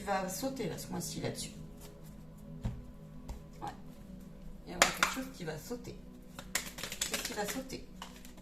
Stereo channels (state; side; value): normal; both; correlation 0.97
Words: va sauter là, ce mois-ci là-dessus. Ouais. Il va y avoir quelque chose qui va sauter. Qu'est-ce qui va sauter?